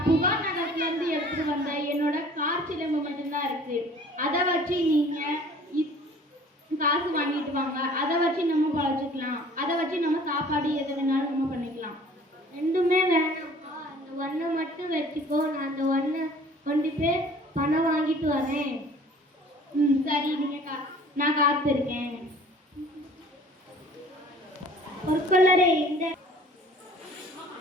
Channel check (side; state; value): both; normal; correlation 0.50